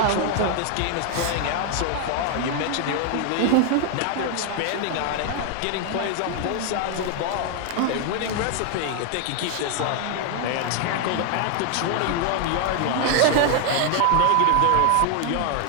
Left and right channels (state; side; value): different; both; correlation 0.00